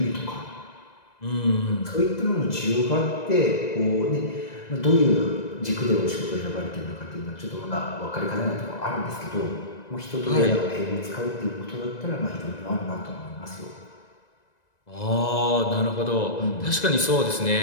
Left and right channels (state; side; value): late; right; 1.9 ms